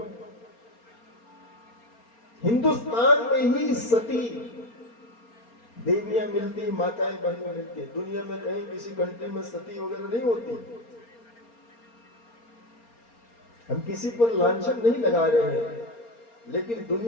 हिंदुस्तान में ही सती देवियां मिलती, माताएं बहनें मिलती है। दुनिया में कहीं किसी कंट्री में सती वगैरह नहीं होती। हम किसी पर लांछन नहीं लगा रहे हैं, लेकिन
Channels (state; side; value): late; right; 4.3 ms